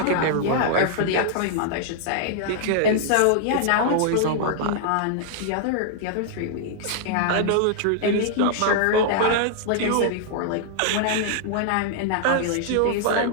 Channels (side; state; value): both; different; correlation -0.01